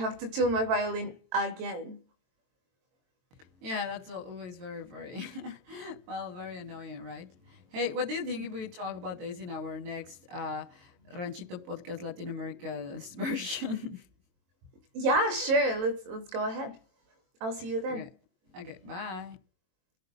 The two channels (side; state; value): left; late; 22 ms